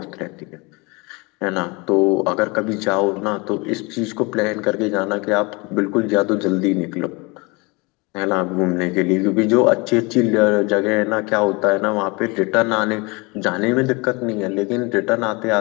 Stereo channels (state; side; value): quieter; right; 27.0 dB